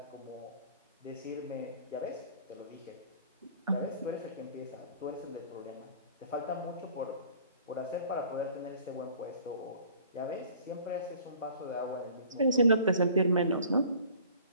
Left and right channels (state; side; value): inverted; both; correlation -0.50